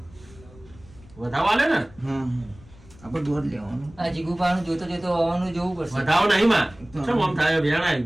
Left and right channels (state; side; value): noise; left; rumble, 23 dB below the sound